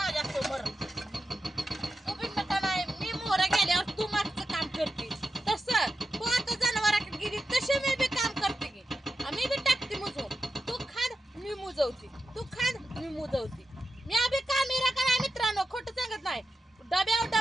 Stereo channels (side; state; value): both; normal; correlation 0.91